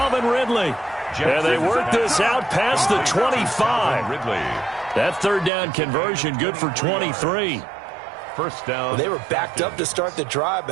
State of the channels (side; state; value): left; drops out; at 5.5 s